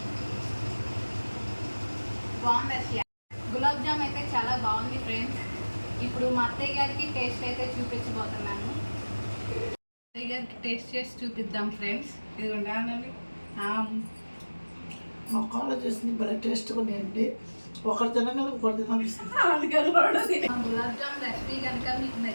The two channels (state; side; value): inverted; both; correlation -1.00